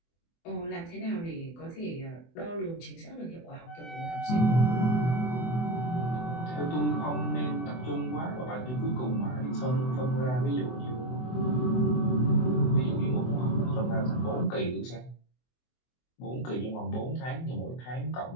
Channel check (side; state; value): right; late; 24 ms